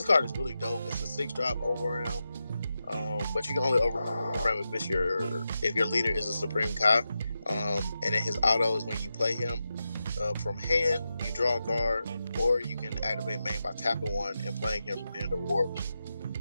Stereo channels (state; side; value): inverted; both; correlation -0.90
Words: card is really dope. It's a 6-drop overram, but you can only overram if your leader is a Supreme Kai. And then his auto is when you play him from hand, you draw a card, or you can activate main by tapping one and playing him from hand or warp.